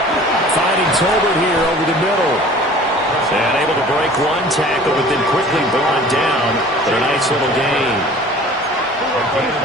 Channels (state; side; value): normal; both; correlation 0.46